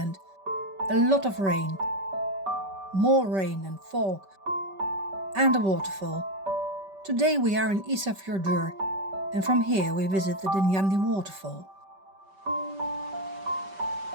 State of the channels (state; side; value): late; left; 5.2 ms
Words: a lot of rain, more rain and fog, and a waterfall. Today we are in Isafjördur, and from here we visit the Dynjandi waterfall.